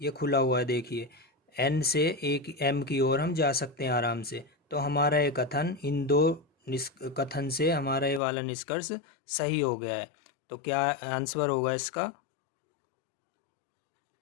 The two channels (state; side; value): drops out; right; at 8.2 s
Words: ये खुला हुआ है देखिए, एन से एक एम की ओर हम जा सकते हैं आराम से। तो हमारा ये कथन, इन दो कथन से हमारा ये वाला निष्कर्ष सही हो गया है। तो क्या आंसर होगा इसका,